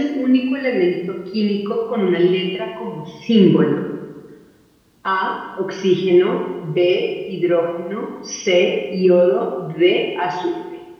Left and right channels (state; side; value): identical; both; correlation 1.00